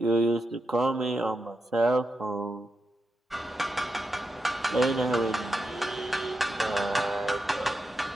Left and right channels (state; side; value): normal; both; correlation 0.86